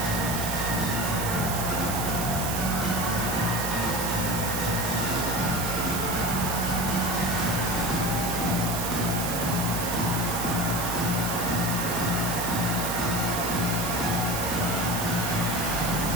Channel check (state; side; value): noise; right; hiss, 4 dB below the sound